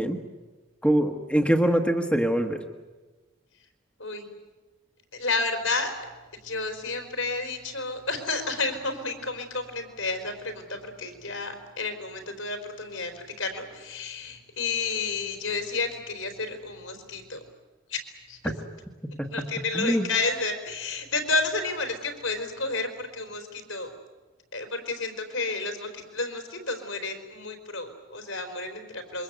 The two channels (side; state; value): both; normal; correlation 0.31